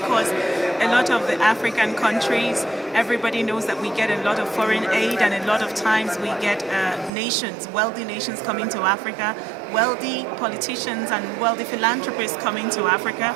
a lot of the African countries, everybody knows that we get a lot of foreign aid, and a lot of times we get nations, wealthy nations coming to Africa, wealthy politicians and wealthy philanthropists coming to Africa,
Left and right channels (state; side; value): drops out; left; at 7.1 s